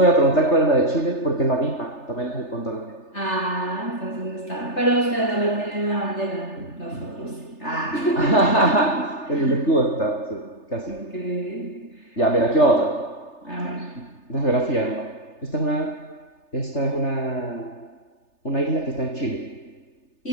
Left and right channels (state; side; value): late; right; 3.3 ms